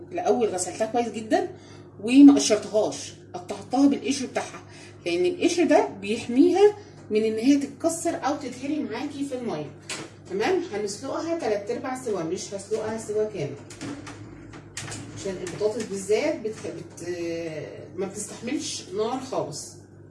غسلتها كويس جدا وما قشرتهاش، قطعتها بالقشر بتاعها، لان القشر ده بيحميها من ان هي تتكسر او تتهري معاكي في الميه. تمام، هنسلقها 3/4 سوا، مش هسلقها سوا كامل، عشان البطاطس بالذات ما بتستحملش نار خالص.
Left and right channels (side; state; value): both; identical; correlation 1.00